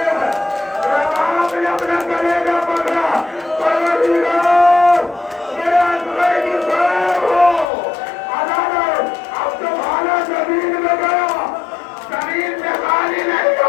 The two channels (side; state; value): right; drops out; at 7.7 s